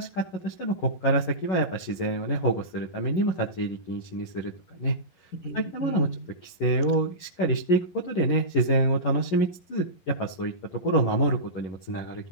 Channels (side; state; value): right; late; 11 ms